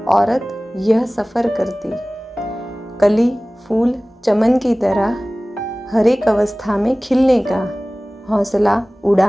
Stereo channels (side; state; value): both; normal; correlation 0.98